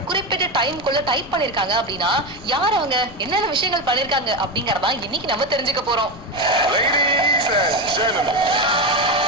குறிப்பிட்ட டைம்குள்ள டைப் பண்ணிருக்காங்க அப்படின்னா யார் அவங்க என்னென்ன விஷயங்கள் பண்ணிருக்காங்க அப்படிங்கறதா இன்னைக்கு நம்ம தெரிஞ்சுக்க போறோம். Ladies and gentlemen,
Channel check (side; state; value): left; noise; rumble, 17 dB below the sound